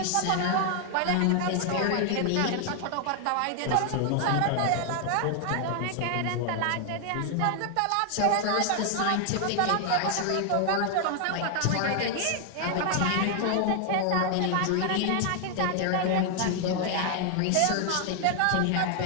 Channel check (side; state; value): both; different; correlation 0.00